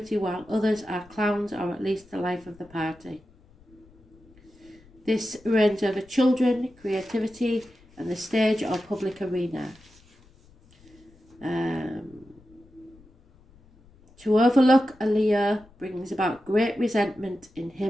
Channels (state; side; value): noise; left; rumble, 28 dB below the sound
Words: while others are clowns or at least the life of the party. This reigns over children, creativity, and the stage or public arena. To overlook a Leo brings about great resentment in